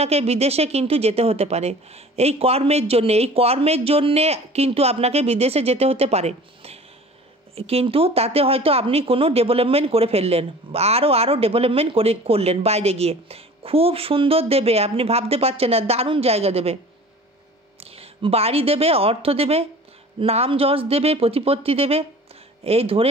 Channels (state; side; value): normal; both; correlation 0.44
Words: বিদেশে কিন্তু যেতে হতে পারে, এই কর্মের জন্যে কিন্তু আপনাকে বিদেশে যেতে হতে পারে, কিন্তু তাতে হয়তো আপনি কোনো ডেভেলপমেন্ট করে ফেললেন, আরও ডেভেলপমেন্ট করলেন বাইরে গিয়ে, খুব সুন্দর দেবে, আপনি ভাবতে পারছেন না, দারুণ জায়গা দেবে, বাড়ি দেবে, অর্থ দেবে, নাম যশ দেবে, প্রতিপত্তি দেবে, এই ধরে